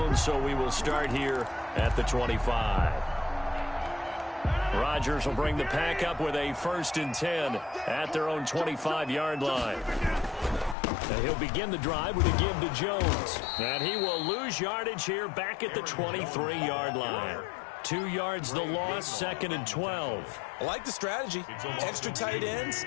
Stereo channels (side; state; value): right; drops out; at 10.8 s